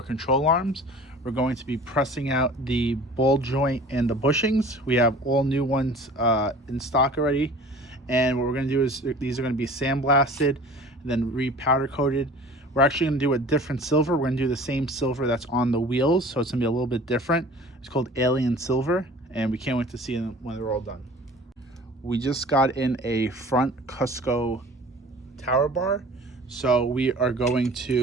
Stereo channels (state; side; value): normal; both; correlation 0.44